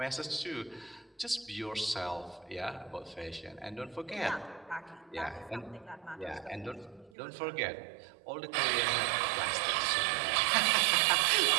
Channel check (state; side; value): drops out; left; at 7.1 s